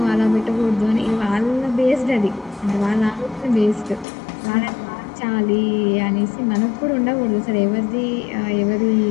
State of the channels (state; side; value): drops out; right; at 4.0 s